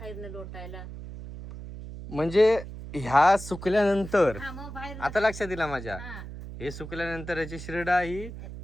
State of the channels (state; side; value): noise; right; hum, 11 dB below the sound